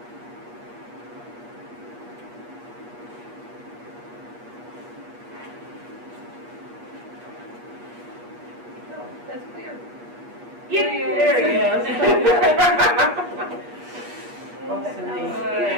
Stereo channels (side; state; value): left; late; 8.4 ms